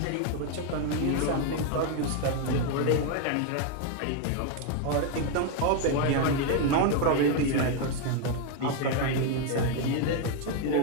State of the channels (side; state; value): both; different; correlation 0.01